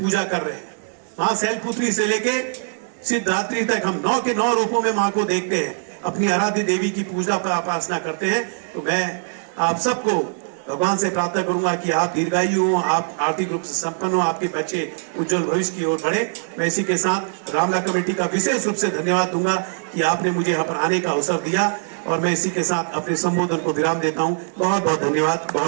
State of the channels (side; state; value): left; silent; digital silence